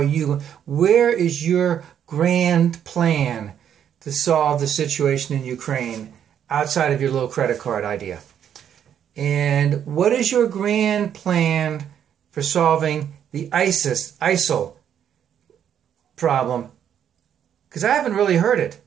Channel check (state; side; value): quieter; left; 9.2 dB